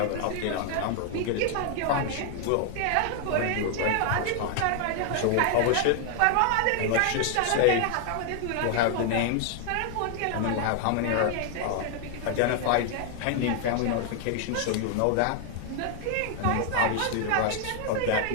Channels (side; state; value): both; different; correlation 0.00